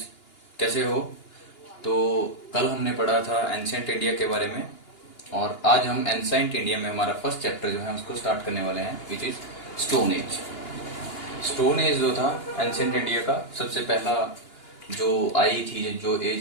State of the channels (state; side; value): late; right; 2.9 ms